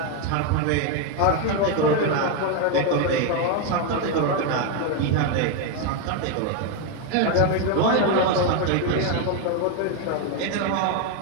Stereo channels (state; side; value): different; both; correlation 0.01